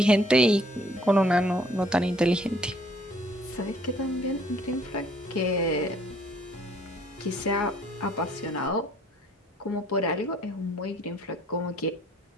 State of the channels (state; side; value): normal; both; correlation 0.60